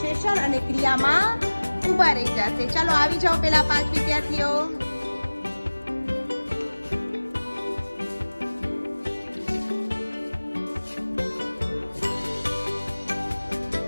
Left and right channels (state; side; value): inverted; both; correlation -1.00